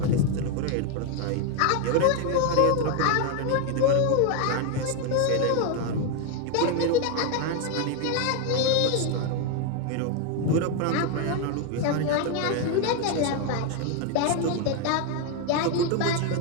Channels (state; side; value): different; both; correlation 0.01